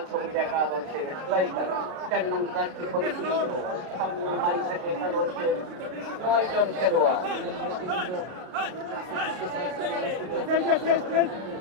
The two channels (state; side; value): late; left; 33 ms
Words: সবুজ একাদশের স্ট্রাইকার 4 নং জার্সি পরিহিত সামনে মাইঝাটি একাদশের 9 জন খেলোয়াড়।